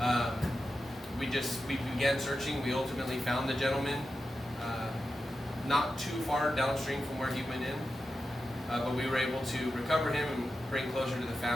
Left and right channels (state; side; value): normal; both; correlation 0.90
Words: we began searching. We ultimately found the gentleman not too far downstream from where he went in, but we were able to recover him and bring closure to the